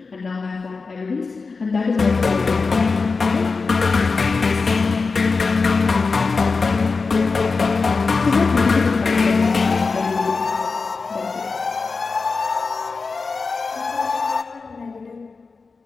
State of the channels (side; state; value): right; quieter; 4.4 dB